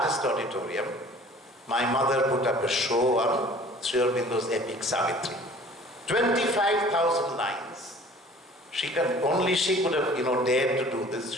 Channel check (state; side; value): normal; both; correlation 0.49